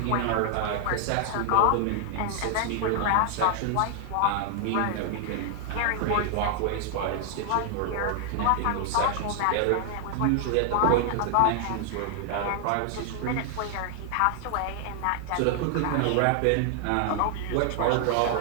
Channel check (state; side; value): different; both; correlation 0.00